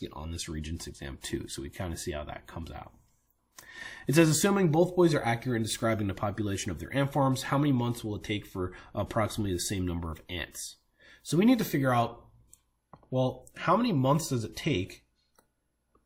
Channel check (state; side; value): identical; both; correlation 1.00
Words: it on this Regents exam too, so we kind of see how that comes out. It says, assuming both boys are accurate in describing the population of their ant farms, how many months will it take for approximately the same number of ants? So we need to figure out Well, how many months does it take